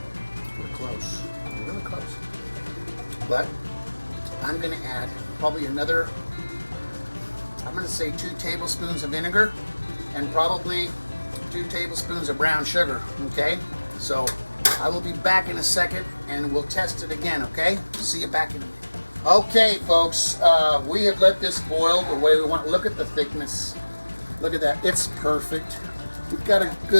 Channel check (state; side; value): inverted; both; correlation -1.00